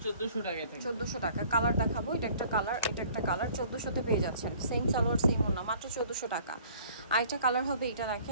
1400 টাকা থেকে। 1400 টাকা। কালার দেখাবো, এটা একটা কালার, এটা একটা কালার, 1400 তে পেয়ে যাচ্ছেন। সেম সালোয়ার সেম ওনা, মাত্র 1400 টাকা। আরেকটা কালার হবে, এটা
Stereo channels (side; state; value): both; inverted; correlation -0.54